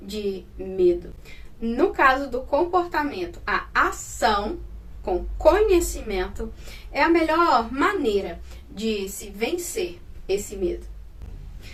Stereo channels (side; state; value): both; identical; correlation 1.00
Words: medo. No caso do comportamento, a ação com conhecimento é a melhor maneira de se vencer esse medo.